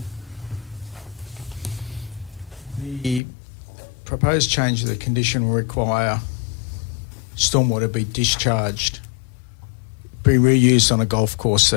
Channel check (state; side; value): drops out; right; at 3.2 s